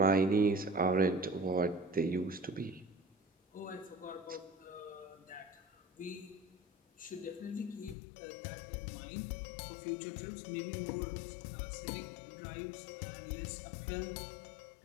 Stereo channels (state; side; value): drops out; right; at 8.0 s